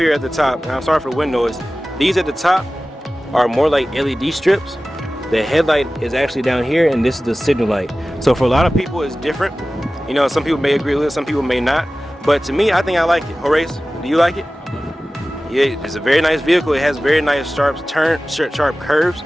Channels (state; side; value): normal; both; correlation 0.96